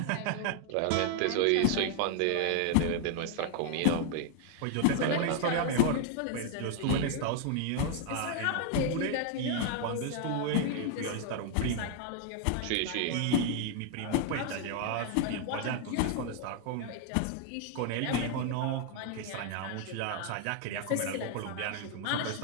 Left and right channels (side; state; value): both; different; correlation 0.00